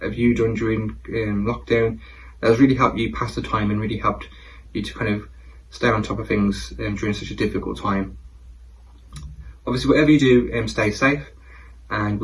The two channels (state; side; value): identical; both; correlation 1.00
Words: have you done during lockdown that has really helped you pass the time and really helped you to kind of stay on top of things during such a difficult time. Obviously, whatever you do, stay safe, and